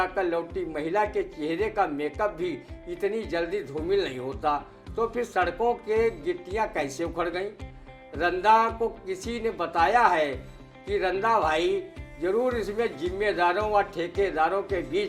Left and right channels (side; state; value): both; identical; correlation 1.00